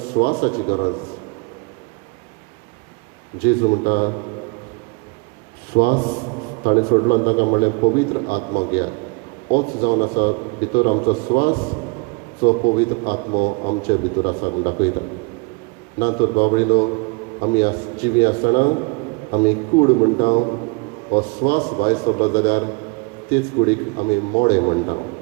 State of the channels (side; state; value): left; quieter; 29.9 dB